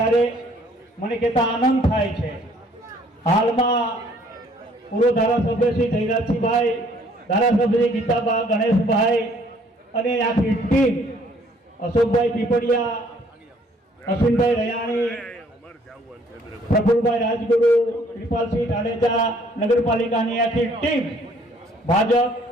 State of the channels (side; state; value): both; normal; correlation 0.61